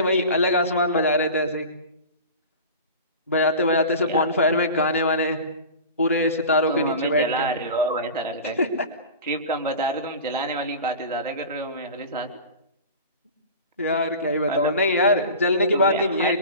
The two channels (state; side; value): inverted; both; correlation -0.35